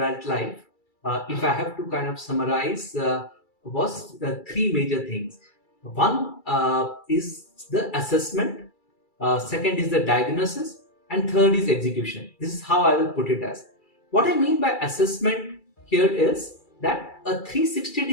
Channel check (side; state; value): right; late; 2.3 ms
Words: if I have to kind of summarize, was three major things. One is the assessment, second is the diagnosis, and third is execution. This is how I will put it as. What I mean by assessment here is that a